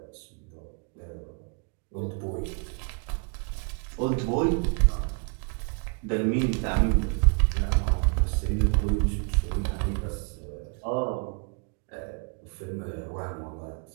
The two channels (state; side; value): quieter; left; 39.0 dB